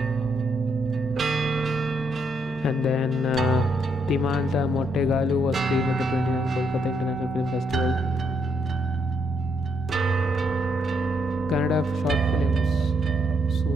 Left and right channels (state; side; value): normal; both; correlation 0.76